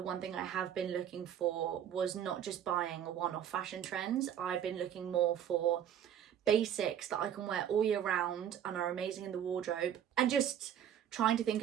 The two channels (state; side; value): quieter; left; 9.8 dB